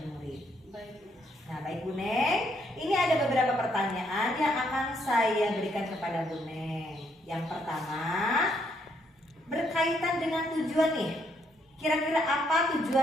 murid. Baik Bu. Nah, baik Bu Neng, ini ada beberapa pertanyaan yang akan saya berikan kepada Bu Neng. Yang pertama, berkaitan dengan tujuan nih. Kira-kira apa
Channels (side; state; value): both; normal; correlation 0.72